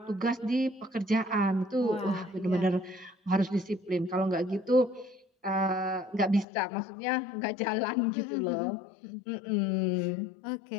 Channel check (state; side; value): drops out; right; at 6.5 s